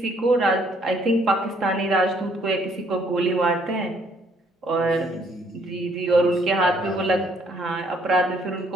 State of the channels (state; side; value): normal; both; correlation 0.65